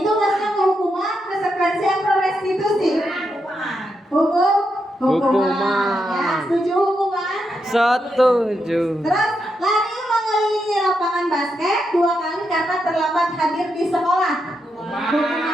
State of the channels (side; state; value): both; normal; correlation 0.83